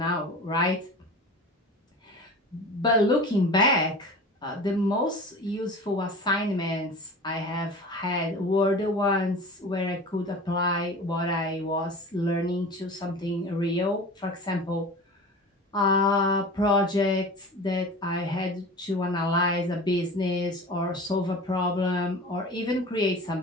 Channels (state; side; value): normal; both; correlation 0.36